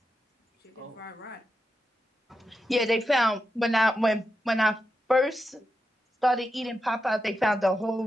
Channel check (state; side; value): normal; both; correlation 0.87